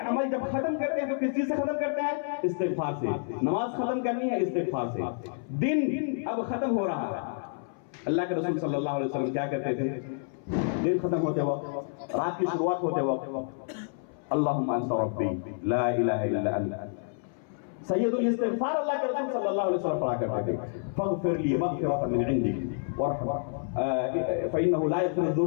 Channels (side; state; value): right; silent; 59 dB below the other